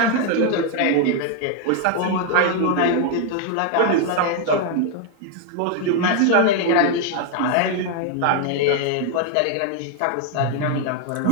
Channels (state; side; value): different; both; correlation 0.00